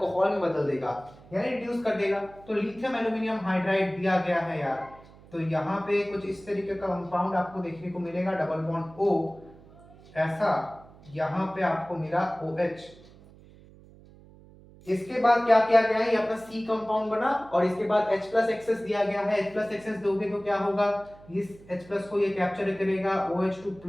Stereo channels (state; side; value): noise; right; hum, 23 dB below the sound